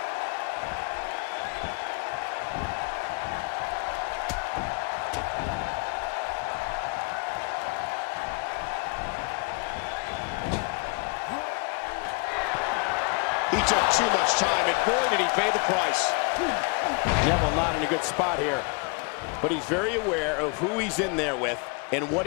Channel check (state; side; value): quieter; right; 32.6 dB